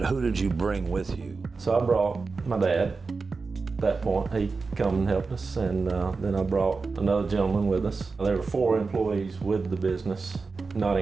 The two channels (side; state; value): left; quieter; 4.3 dB